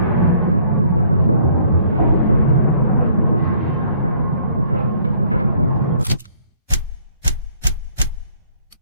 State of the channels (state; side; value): inverted; both; correlation -0.61